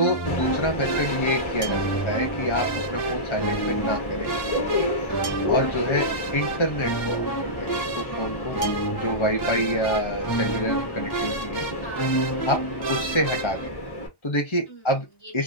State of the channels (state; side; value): late; right; 1.1 ms